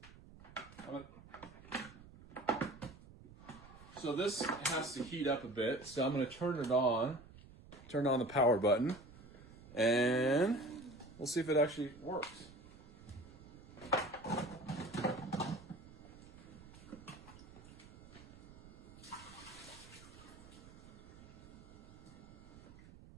So this has to heat up a bit. So I'm going to turn on the power button, and we'll see if it actually works.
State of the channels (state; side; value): noise; right; rumble, 19 dB below the sound